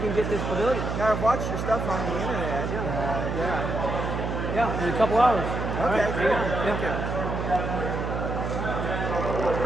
to get this pavilion. Now, I've watched your stuff on the internet. Yeah. Yeah, in a couple hours. All Okay, right, cool. hang on. Yeah.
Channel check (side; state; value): right; noise; hum, 3 dB below the sound